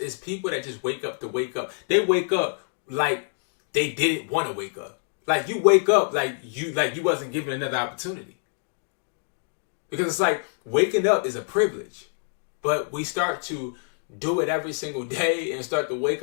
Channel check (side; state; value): right; silent; 61 dB below the other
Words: people that just wake up to wake up. They wake up like they didn't want to wake up. Like, you wake up like you wasn't given another opportunity. Because it's like waking up is a privilege. But we start to do it every single day and start to wake